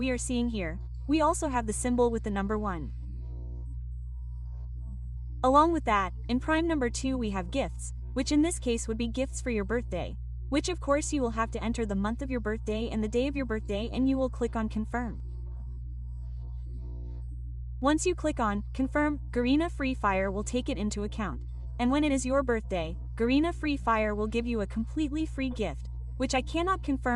are seeing here, we also have the symbol with the number 1. Along with that, in Prime number 2 we have gifts, which in this case would be gifts for your birthday, which of course you will have to enter the month of your birthday and the day of your birthday, and you will click on confirm. Once you click on confirm, Garena Free Fire will take it into account, and when it is your birthday, Garena Free Fire will give you a completely free gift, which I cannot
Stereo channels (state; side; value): identical; both; correlation 1.00